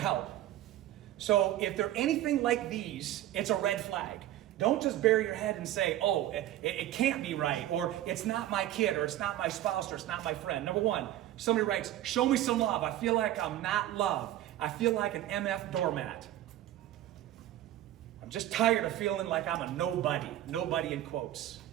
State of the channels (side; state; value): left; quieter; 13.6 dB